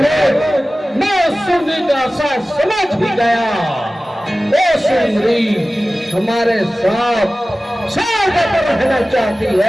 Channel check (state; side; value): normal; both; correlation 0.97